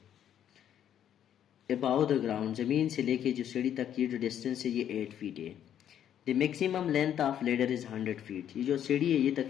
अबाउ द ग्राउंड, ज़मीन से लेके जो सीढ़ी तक ये जो डिस्टेंस है ये 8 फीट है। The maximum length of ladder is 100 feet. ये जो सीढ़ी है ये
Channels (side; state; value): right; quieter; 10.0 dB